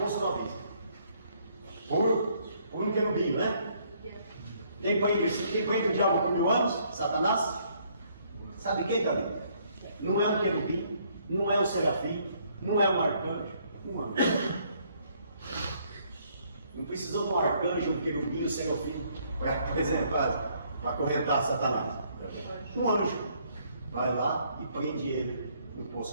poço do abismo. Por um querubim, né? Quem prende o diabo por 1000 anos? Satanás? Sabe quem, Davi? Não é um querubim, não é um serafim, não é um arcanjo, um anjo. Não precisou de um arcanjo, um querubim, um serafim, por exemplo, para acorrentar Satanás. Um anjo vai lá e prende ele no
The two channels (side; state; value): both; inverted; correlation -0.67